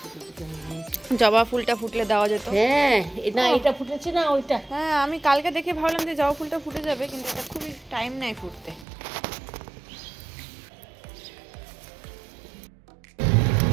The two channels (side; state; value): left; drops out; at 8.8 s